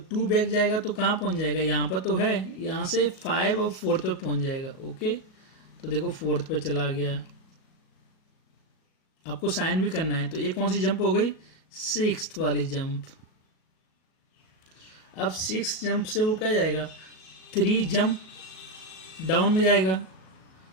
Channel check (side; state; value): right; late; 38 ms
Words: 2 बैक जाएगा तो कहाँ पहुँच जाएगा, यहाँ पर तो है, यहाँ से 5 और 4th पे पहुँच जाएगा, ओके। तो देखो 4th पे चला गया, आपको साइन भी करना है। तो ये कौन सी जंप हो गई, 6th वाली जंप। अब 6th जंप से वो क्या जाएगा, 3 जंप डाउन में जाएगा।